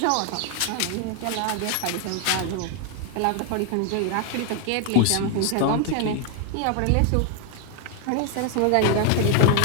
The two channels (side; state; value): both; different; correlation 0.00